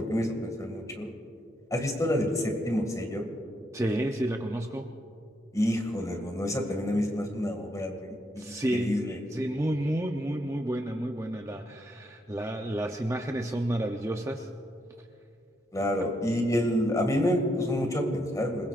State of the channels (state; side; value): normal; both; correlation 0.77